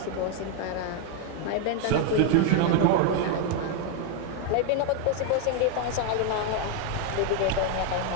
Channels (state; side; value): different; both; correlation 0.01